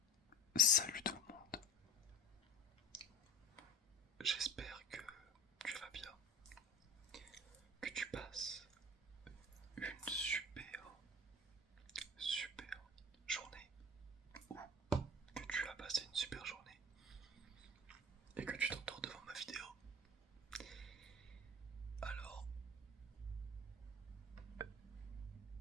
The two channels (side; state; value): both; normal; correlation 0.37